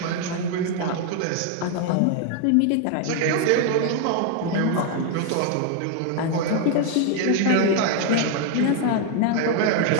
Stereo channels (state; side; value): different; both; correlation 0.00